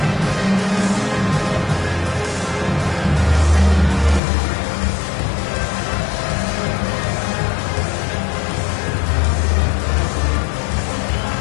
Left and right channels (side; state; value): right; drops out; at 4.2 s